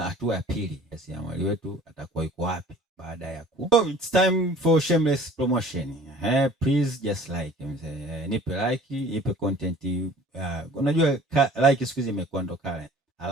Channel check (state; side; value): normal; both; correlation 0.48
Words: ya pili, jasiriamali wetu atakuwa yuko wapi baada ya So it's time for shameless promotion. Please just like nipe like, nipe content. Unajua like siku hizi imekuwa ndo kale.